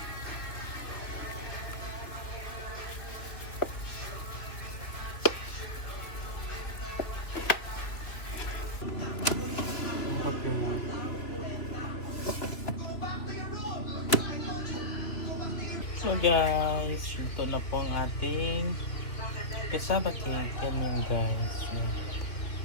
So guys, ito na po ang ating cassava cake. Yan yun guys. Yan.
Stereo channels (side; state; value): right; late; 3.1 ms